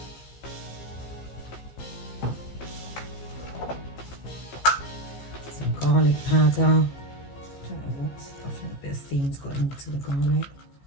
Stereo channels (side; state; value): right; late; 15 ms